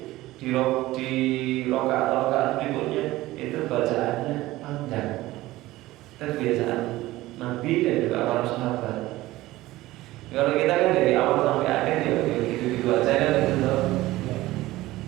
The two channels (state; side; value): quieter; left; 17.6 dB